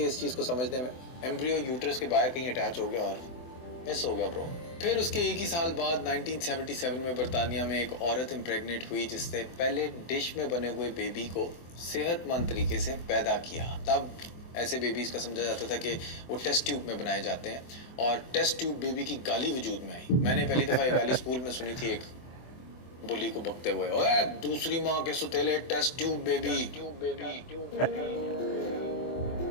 اس چیز کو سمجھنے میں. ایمبریو یوٹرس کے باہر کہیں اٹیچ ہو گیا اور مس ہو گیا برو. پھر اس کے ایک ہی سال بعد 1977 میں برطانیہ میں ایک عورت امپریگنیٹ ہوئی جس نے پہلے ڈش میں بنے ہوئے بیبی کو صحت مند طریقے سے پیدا کیا. تب ایسے بیبیز کا سمجھا جاتا تھا کہ وہ ٹیسٹ ٹیوب میں بنائے جاتے ہیں, اور ٹیسٹ ٹیوب بیبی کی گالی وجود میں آئی. میں نے پہلی دفعہ یہ گالی اسکول میں سنی تھی, ایک بلی کو بکتے ہوئے, اوے دوسری ماں کے ستیلے ٹیسٹ ٹیوب بیبی.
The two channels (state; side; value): late; right; 24 ms